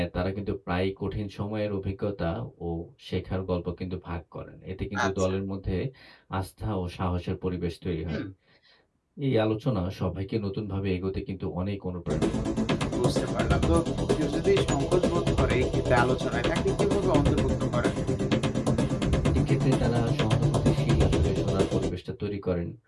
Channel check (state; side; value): identical; both; correlation 1.00